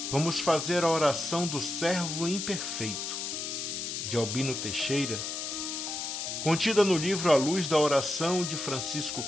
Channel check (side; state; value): left; noise; hiss, 4 dB below the sound